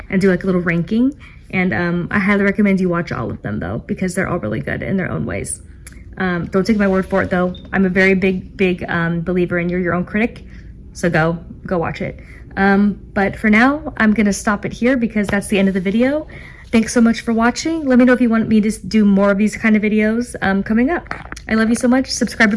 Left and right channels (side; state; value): both; identical; correlation 1.00